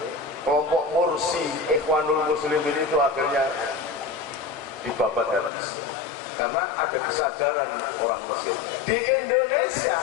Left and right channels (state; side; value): drops out; right; at 5.5 s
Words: Kelompok Mursi Ikhwanul Muslimin itu akhirnya dibabat habis. Karena ada kesadaran orang Mesir. Di Indonesia